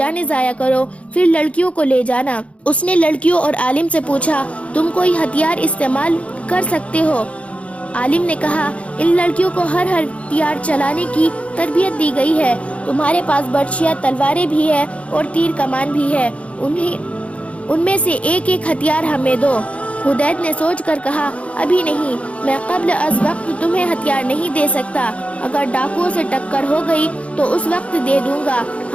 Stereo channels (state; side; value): late; right; 0.063 ms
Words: ضائع کرو، پھر لڑکیوں کو لے جانا۔ اس نے لڑکیوں اور عالم سے پوچھا، تم کوئی ہتھیار استعمال کر سکتے ہو؟ عالم نے کہا، ان لڑکیوں کو ہر ہتھیار چلانے کی تربیت دی گئی ہے۔ تمہارے پاس برچھیاں، تلواریں بھی ہے اور تیر کمان بھی ہے، ان میں سے ایک ایک ہتھیار ہمیں دو۔ حدید نے سوچ کر کہا، ابھی نہیں، میں قبل از وقت تمہیں ہتھیار نہیں دے سکتا۔ اگر ڈاکوؤں سے ٹکر ہو گئی تو اس وقت دے دوں گا۔